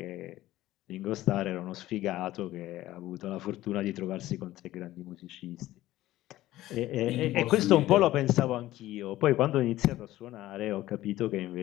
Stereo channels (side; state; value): right; quieter; 15.5 dB